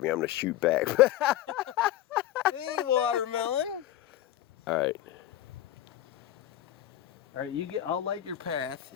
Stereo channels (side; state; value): right; quieter; 12.8 dB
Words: me, I'm gonna shoot back. Hey, watermelon. Alright. All right, you get. I'll light your path.